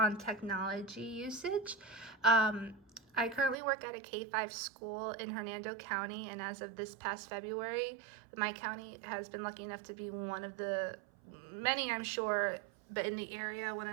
technology usage. I currently work at a K-5 school in Hernando County, and as of this past February, my county has been lucky enough to be one of the many, I'm sure, but in the area, one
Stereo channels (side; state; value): left; drops out; at 3.6 s